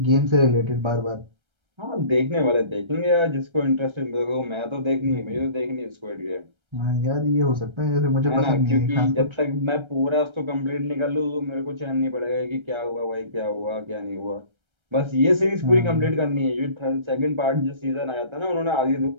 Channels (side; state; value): left; late; 1.3 ms